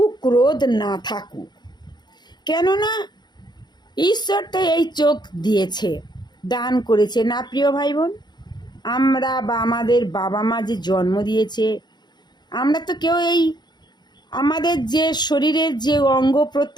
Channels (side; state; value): right; late; 0.21 ms